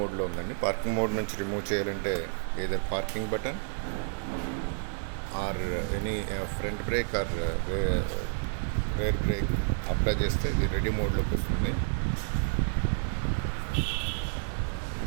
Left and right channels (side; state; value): left; silent; 58 dB below the other